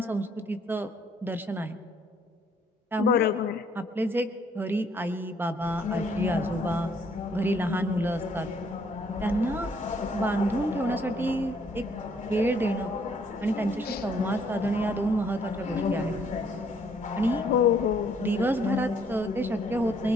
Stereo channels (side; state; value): both; normal; correlation 0.65